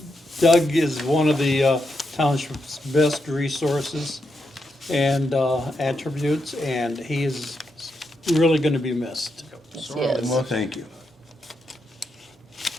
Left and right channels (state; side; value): normal; both; correlation 0.83